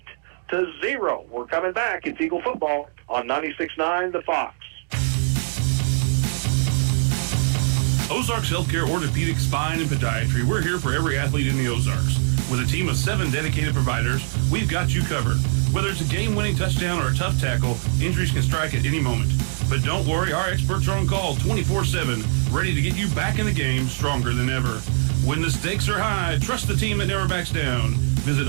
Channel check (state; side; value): silent; left; 64 dB below the other